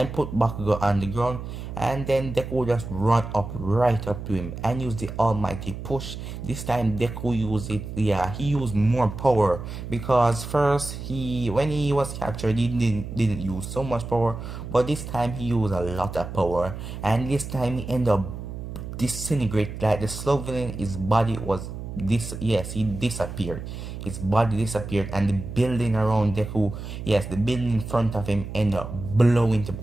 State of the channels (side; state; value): right; noise; hum, 8 dB below the sound